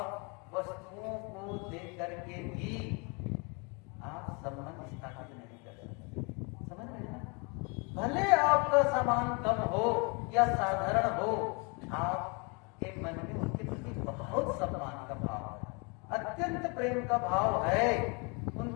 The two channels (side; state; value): right; quieter; 31.5 dB